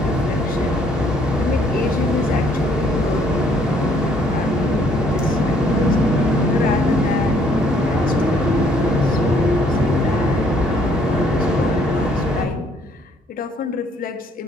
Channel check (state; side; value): normal; both; correlation 0.64